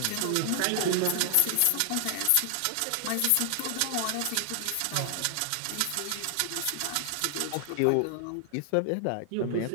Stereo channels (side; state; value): both; different; correlation 0.00